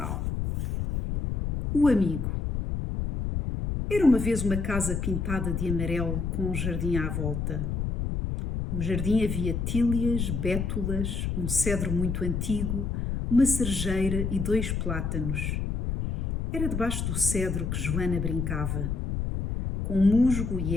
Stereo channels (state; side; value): noise; left; rumble, 2 dB below the sound